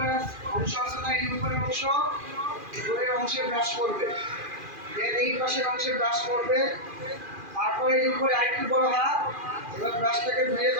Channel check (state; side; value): late; left; 2.4 ms